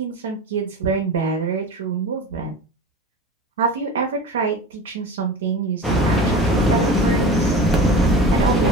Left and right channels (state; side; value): normal; both; correlation 0.33